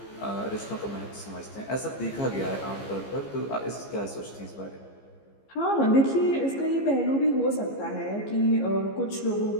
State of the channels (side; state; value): right; late; 15 ms